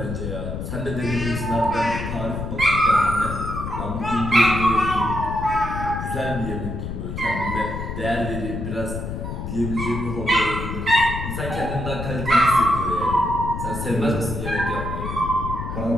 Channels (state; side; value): noise; left; rumble, 5 dB below the sound